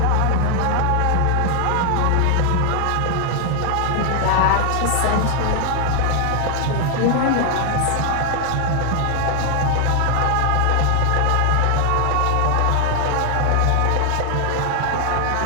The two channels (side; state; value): both; different; correlation 0.00